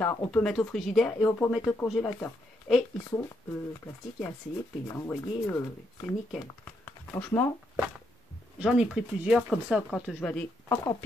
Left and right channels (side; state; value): both; normal; correlation 0.77